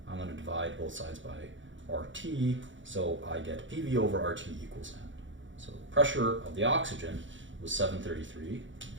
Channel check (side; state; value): left; late; 0.55 ms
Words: I'm going to divide both sides by RT, so I get PV over RT equals N. So the pressure of the oxygen was 733.